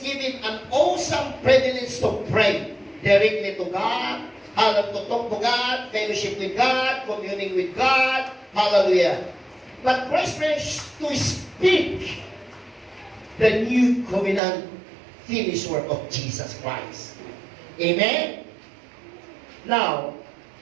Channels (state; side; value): drops out; left; at 14.4 s